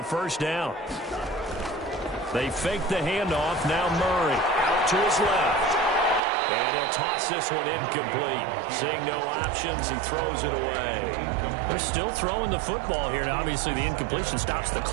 first down. They fake the handoff. Now Murray out to his left. And he'll toss this one incomplete. Seeing no options, he throws it away. They're still throwing the football here. Now, obviously, the incompletion stops the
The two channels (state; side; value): drops out; left; at 6.2 s